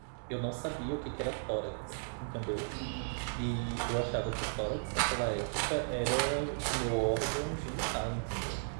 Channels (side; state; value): left; silent; digital silence